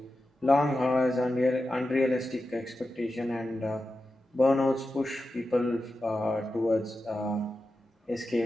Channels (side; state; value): both; normal; correlation 0.91